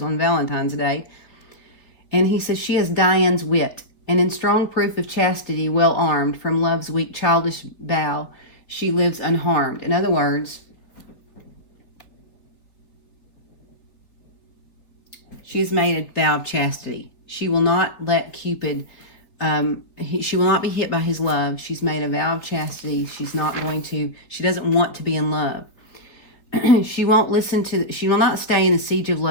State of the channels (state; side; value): late; right; 4.2 ms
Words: on Valentine's Day. And he says, she has Diane's wit, and in strong proof of chastity, well armed, from love's weak childish bow, she lives unharmed. In other words, she has made a vow of chastity. She will not let Cupid... she will not be hit by his love. She's made a vow of chastity. She doesn't want to be in love. She will not stay in the siege of